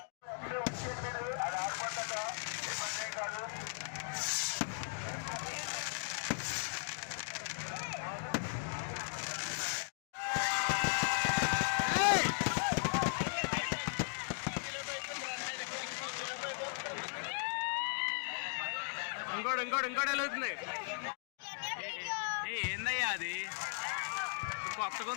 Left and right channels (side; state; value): right; silent; digital silence